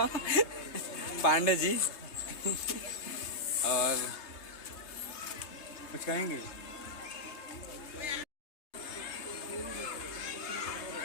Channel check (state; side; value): late; right; 3.3 ms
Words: पांडे जी। और कुछ कहेंगे?